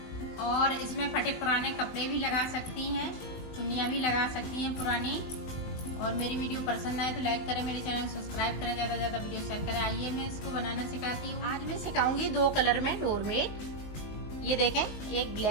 और इसमें फटे पुराने कपड़े भी लगा सकती हैं, चुन्नियाँ भी लगा सकती हैं पुरानी। और मेरी वीडियो पसंद आए तो लाइक करें, मेरे चैनल सब्सक्राइब करें, ज़्यादा से ज़्यादा वीडियो शेयर करें। आइए मैं इसको बनाना सिखाती हूँ। आज मैं सिखाऊंगी 2 कलर में डोरमेट। ये देखें, एक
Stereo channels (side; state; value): right; late; 19 ms